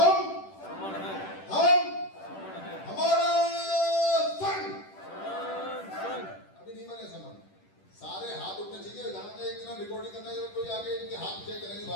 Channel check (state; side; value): late; right; 10 ms